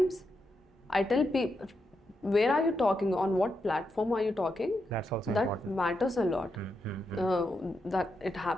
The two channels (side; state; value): both; normal; correlation 0.84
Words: I tell people, where are you talking, on what platform are you talking? That's also that important. Matters a lot. That it